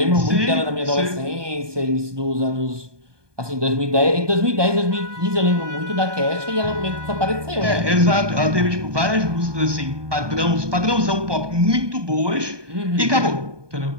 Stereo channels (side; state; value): left; late; 1.2 ms